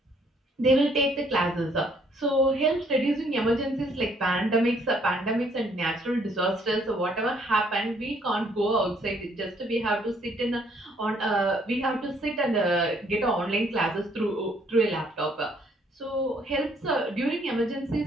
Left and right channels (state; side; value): normal; both; correlation 0.65